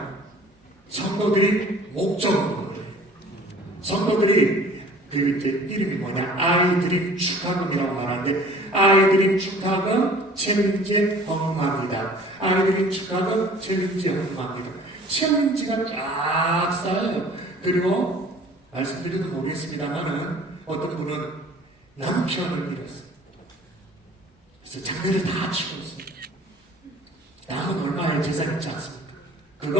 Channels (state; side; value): normal; both; correlation 0.50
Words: 성도들이 목적으로, 성도들이 그 이제 이름이 뭐냐, 아이드림 축하금이라고 말하는데, 아이드림 축하금 챌린지 헌금합니다. 아이드림 축하금 챌린지 헌금합니다. 챌린지가 쫙 쌓여요. 그리고 말씀드려도 모르겠습니다만은 어떤 분은 남편을 잃었어요. 그래서 장례를 다 치고 있어요. 남은 얼마의 재산 있지 않습니까?